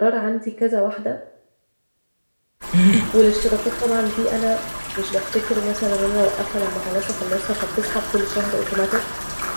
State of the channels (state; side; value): inverted; both; correlation -1.00